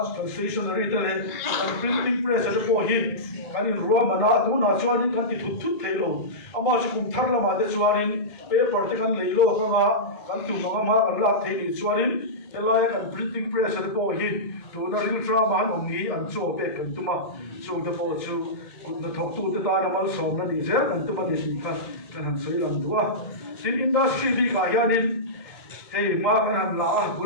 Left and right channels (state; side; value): late; right; 1.7 ms